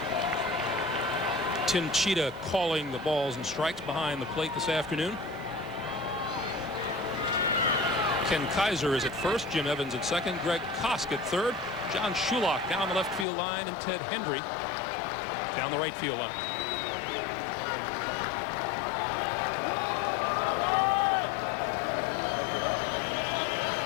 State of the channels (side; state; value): right; drops out; at 13.2 s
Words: Tim Cheetah calling the balls and strikes behind the plate this afternoon. Ken Kaiser is at first, Jim Evans at second, Greg Kosk at third, John Shulock down the left field line, and Ted Hendry down the right field line.